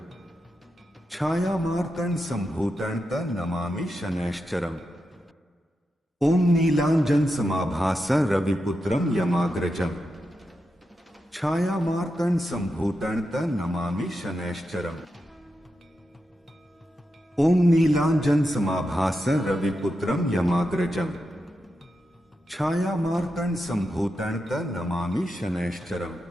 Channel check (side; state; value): both; normal; correlation 0.88